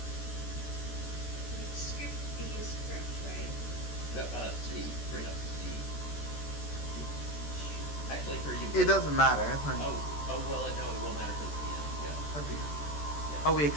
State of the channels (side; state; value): right; late; 14 ms